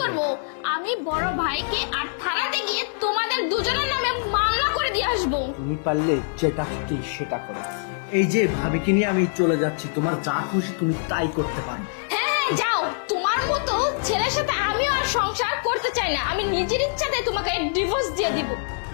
করব? আমি বড় ভাইকে আর থানাতে গিয়ে তোমাদের দুজনের নামে মামলা করে দিয়ে আসবো। তুমি পারলে যেটা খুশি সেটা করো। এই যে ভাবিকে নিয়ে আমি চলে যাচ্ছি, তোমার যা খুশি তুমি তাই করতে পারো। হ্যাঁ, যাও। তোমার মতো ছেলের সাথে আমিও আর সংসার করতে চাই না। আমি নিজের ইচ্ছাতে তোমাকে ডিভোর্স দিয়ে দিব।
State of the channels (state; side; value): silent; right; digital silence